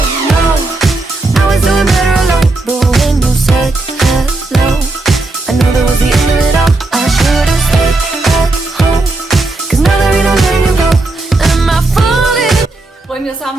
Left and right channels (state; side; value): quieter; left; 3.1 dB